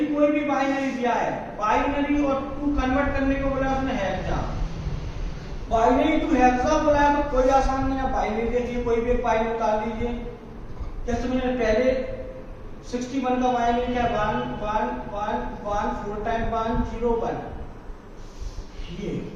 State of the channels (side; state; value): both; identical; correlation 1.00